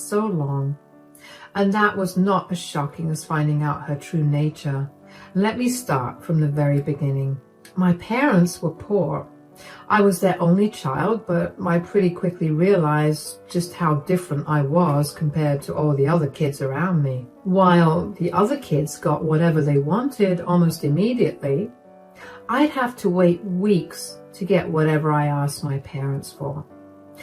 long. And that was not as shocking as finding out her true nature. Let me start from the very beginning. My parents were poor. I was their only child, but I pretty quickly realized just how different I was compared to all the other kids around me. While the other kids got whatever they wanted almost immediately, I'd have to wait weeks to get whatever I asked my parents for.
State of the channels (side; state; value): both; identical; correlation 1.00